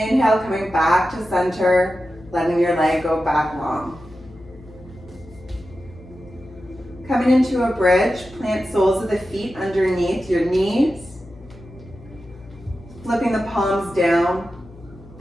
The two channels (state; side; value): noise; left; hum, 21 dB below the sound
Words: coming back to center, letting your leg go back long. Coming into a bridge, plant soles of the feet underneath your knees. Flipping the palms down,